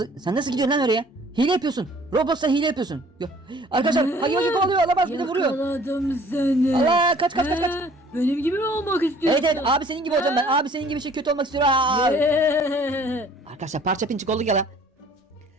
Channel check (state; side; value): normal; both; correlation 0.54